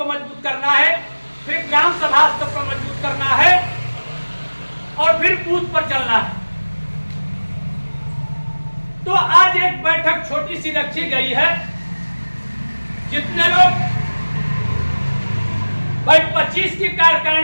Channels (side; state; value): both; inverted; correlation -1.00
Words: मजबूत करना है, फिर ग्राम सभा स्तर पर मजबूत करना है और फिर बूथ पर चलना है। तो आज एक बैठक छोटी सी रखी गई है, जितने लोग भाई 25 की